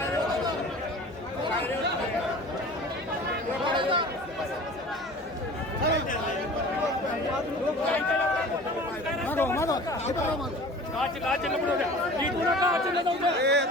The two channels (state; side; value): normal; both; correlation 0.41